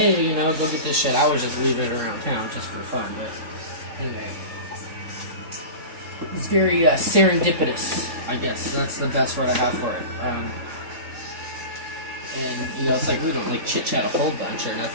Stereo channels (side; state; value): left; late; 3.7 ms